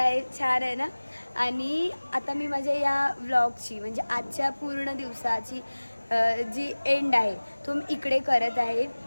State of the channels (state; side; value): inverted; both; correlation -1.00